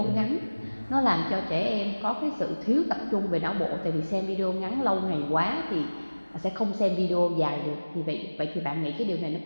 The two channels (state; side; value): inverted; both; correlation -1.00